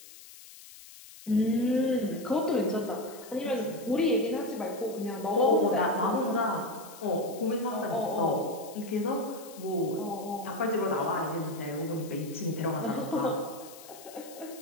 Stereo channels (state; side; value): noise; left; hiss, 18 dB below the sound